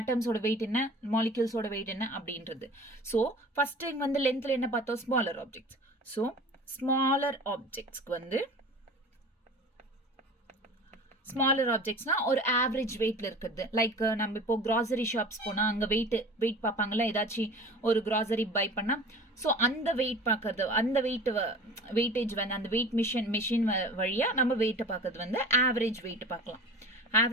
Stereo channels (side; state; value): both; normal; correlation 0.40